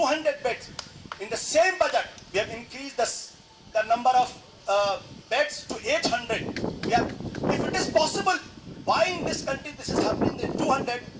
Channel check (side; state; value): both; identical; correlation 1.00